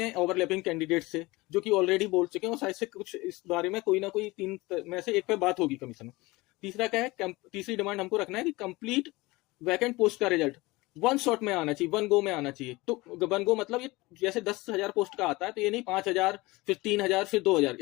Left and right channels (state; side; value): quieter; right; 21.8 dB